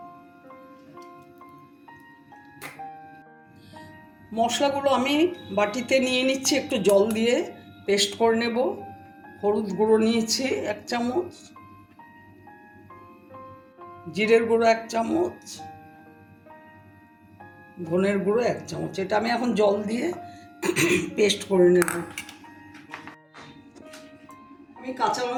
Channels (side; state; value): both; identical; correlation 1.00